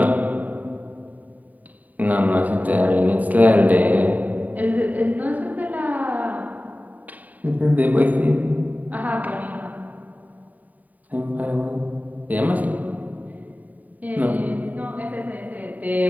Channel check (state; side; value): late; left; 0.077 ms